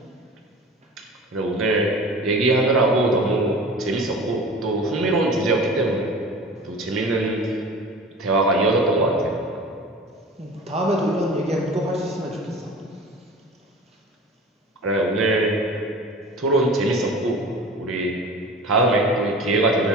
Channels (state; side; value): normal; both; correlation 0.38